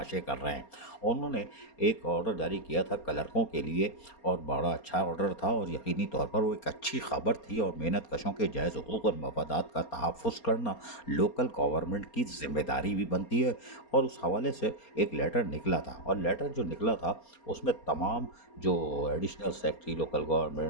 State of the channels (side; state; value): right; late; 4.3 ms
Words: कर रहे हैं। उन्होंने एक ऑर्डर जारी किया था क्लर्कों के लिए, और बड़ा अच्छा ऑर्डर था, और यकीनी तौर पर वो एक अच्छी खबर थी, और मेहनत कशों के जायज़ हुकूक और मफादात का तहफ़्फ़ुज़ करना लोकल गवर्नमेंट की ज़िम्मेदारी भी बनती है। और उस हवाले से एक लेटर निकला था, और लेटर जो निकला था उसमें तमाम जो एडिशनल सेक्रेटरी लोकल